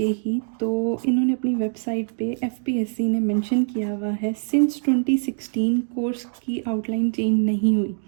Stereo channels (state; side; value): silent; left; digital silence